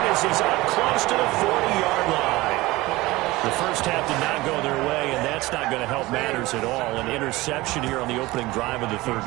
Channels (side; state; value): left; quieter; 19.9 dB